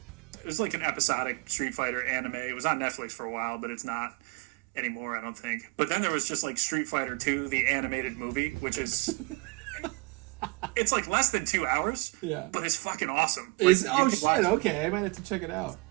was like an episodic Street Fighter anime. It was on Netflix for a while, but it's not anymore, I don't think. But then there was just like Street Fighter 2, the animated movie, which is it's like less than 2 hours. Yeah, but it's fucking awesome. Oh shit! Okay, I might have to check it out.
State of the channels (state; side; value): quieter; left; 28.0 dB